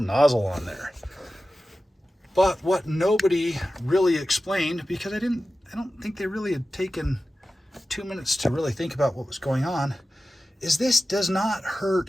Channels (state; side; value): normal; both; correlation 0.94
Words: nozzle on there. But what nobody really explained, because I don't think they really had taken 2 minutes to really think about what was going on, is this does not